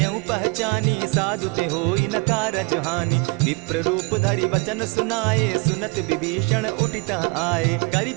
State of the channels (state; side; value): quieter; left; 29.8 dB